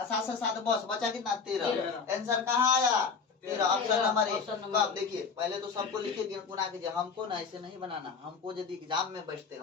से 7 बस बचा कितना 13, आंसर कहाँ आया 13, ऑप्शन नंबर 1। तो आप देखिए पहले तो सबको लिखे गुना कीजिए, हमको ना ऐसे नहीं बनाना, हमको यदि एग्जाम में बैठते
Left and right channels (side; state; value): right; quieter; 5.4 dB